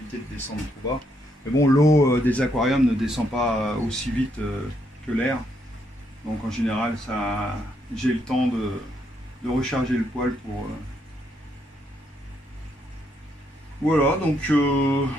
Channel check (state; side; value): normal; both; correlation 0.75